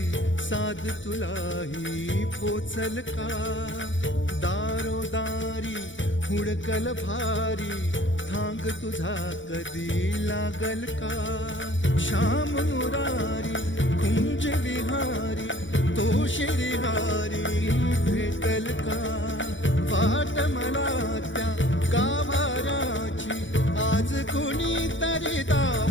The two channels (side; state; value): right; late; 0.56 ms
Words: साध तुलाही पोचल का दारोदारी हुडकल भारी थांग तुझा कधी लागल का श्याम मुरारी कुंज विहारी तो शिरिहारी भेटल का वाट मला त्या गाभाराची आज कोणी तरी